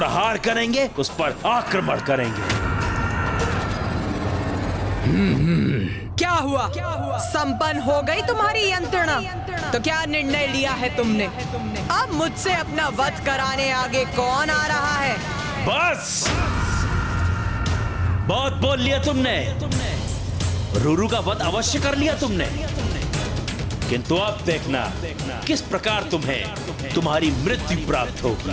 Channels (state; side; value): identical; both; correlation 1.00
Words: करेंगे, उस पर आक्रमण करेंगे। क्या हुआ? संपन्न हो गई तुम्हारी यंत्रणा? तो क्या निर्णय लिया है तुमने? अब मुझसे अपना वध कराने आगे कौन आ रहा है? बस बहुत बोल लिया तुमने। रूरू का वध अवश्य कर लिया तुमने, किंतु अब देखना किस प्रकार तुम्हें तुम्हारी मृत्यु प्राप्त